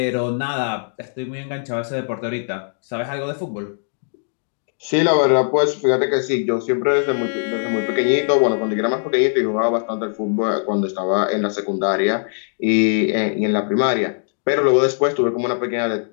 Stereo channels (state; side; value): silent; right; digital silence